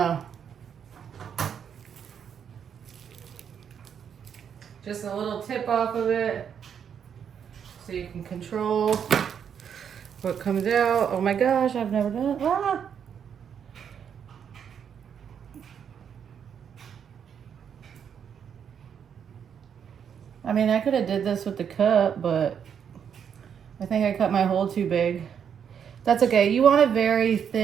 Just a little tip off of it so you can control what comes out. Oh my gosh, I've never done it. Ah! I mean, I could have did this with the cup, but I think I cut my hole too big. That's okay. You want a very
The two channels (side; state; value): left; quieter; 7.9 dB